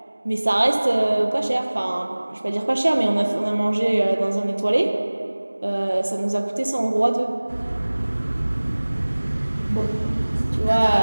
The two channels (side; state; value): both; inverted; correlation -1.00